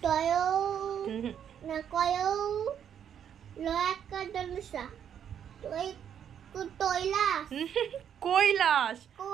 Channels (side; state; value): left; quieter; 8.9 dB